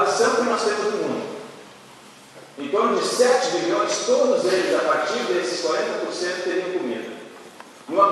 que nós temos no mundo. Em torno de 7 bilhões, todos eles, a partir desses 40%, teriam comida. Numa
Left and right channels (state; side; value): identical; both; correlation 1.00